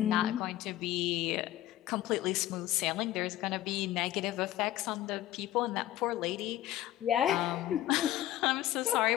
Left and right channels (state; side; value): quieter; right; 14.2 dB